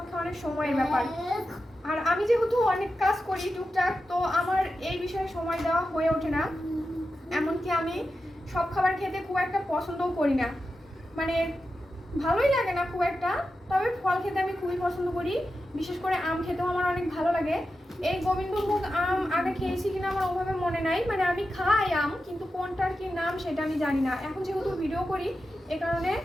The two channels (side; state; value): both; normal; correlation 0.91